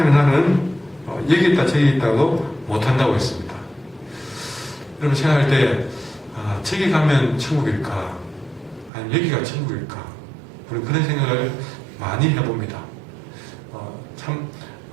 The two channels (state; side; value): drops out; left; at 8.9 s